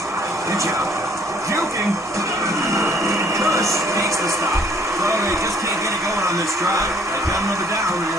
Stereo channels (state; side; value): normal; both; correlation 0.60